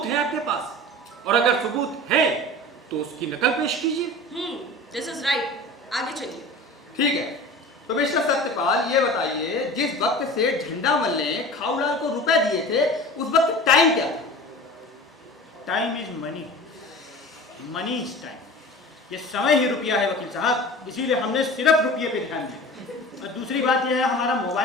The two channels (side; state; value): both; normal; correlation 0.37